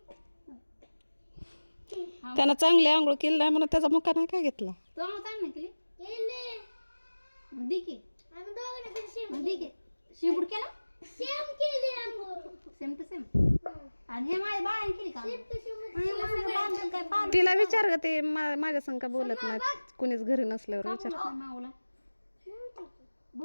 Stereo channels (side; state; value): both; inverted; correlation -1.00